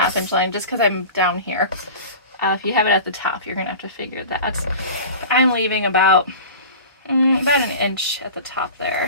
inch line just because I'm down here. If you have it at the top, you're going to have to figure that. I'm leaving about an inch at the top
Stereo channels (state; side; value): inverted; both; correlation -0.36